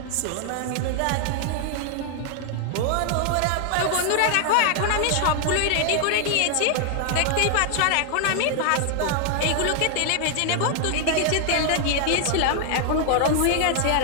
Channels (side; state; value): both; different; correlation 0.00